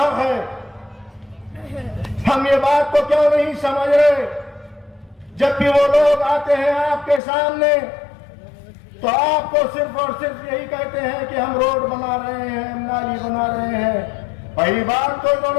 है। हम ये बात को क्यों नहीं समझ रहे? जब भी वो लोग आते हैं आपके सामने तो आपको सिर्फ और सिर्फ यही कहते हैं कि हम रोड बना रहे हैं, हम नाली बना रहे हैं। पहली बात तो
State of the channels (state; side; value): drops out; right; at 7.2 s